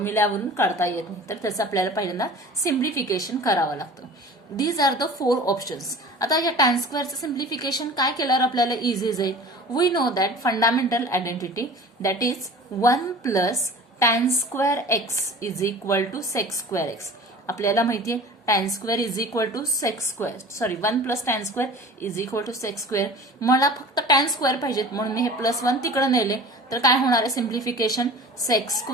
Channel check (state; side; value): normal; both; correlation 0.41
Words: काढता येत नाही, तर त्याचं आपल्याला पहिल्यांदा सिम्प्लिफिकेशन करावं लागतं. These are the 4 options. आता या tan स्क्वेअरचं सिम्प्लिफिकेशन काय केल्यावर आपल्याला इझी जाईल? We know that fundamental identity that is 1 plus tan square x is equal to sec square x. आपल्याला माहिती आहे tan square is equal to sec square, sorry 1 plus tan square is equal to sec square. मला फक्त tan square पाहिजेत म्हणून मी हे +1 तिकडे नेले, तर काय होणार आहे simplification? Sec